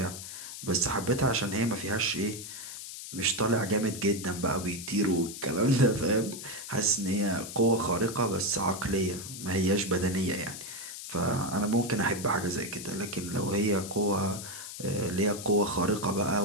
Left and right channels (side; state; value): left; noise; hiss, 10 dB below the sound